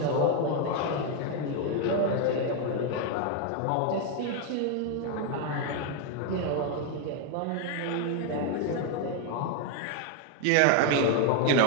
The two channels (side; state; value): both; different; correlation 0.00